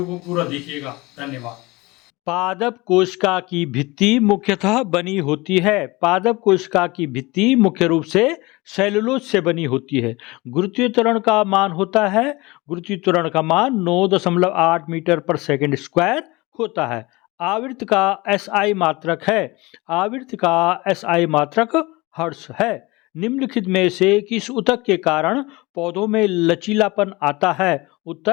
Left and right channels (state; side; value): quieter; right; 22.7 dB